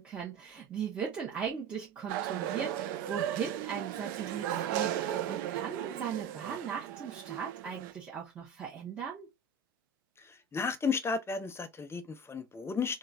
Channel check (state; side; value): quieter; left; 3.6 dB